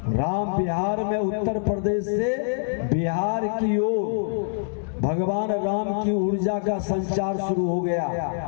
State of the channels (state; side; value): silent; right; digital silence